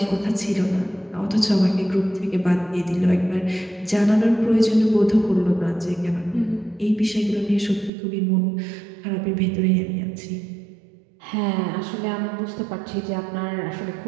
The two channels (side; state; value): left; drops out; at 7.9 s